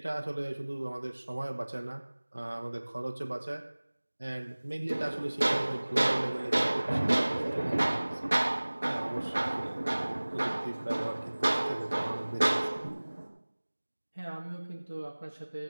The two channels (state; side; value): inverted; both; correlation -1.00